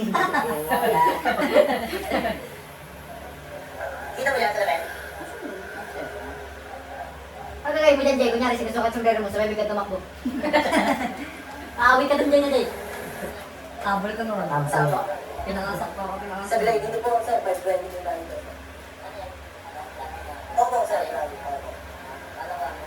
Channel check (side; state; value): both; identical; correlation 1.00